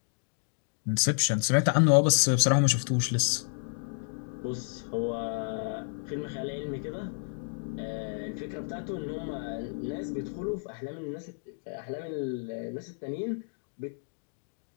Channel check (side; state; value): right; silent; digital silence